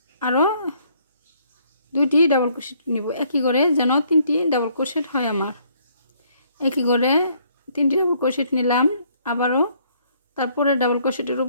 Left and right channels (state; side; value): inverted; both; correlation -0.66